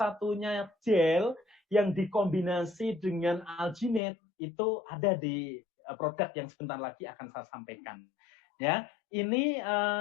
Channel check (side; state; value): right; drops out; at 4.0 s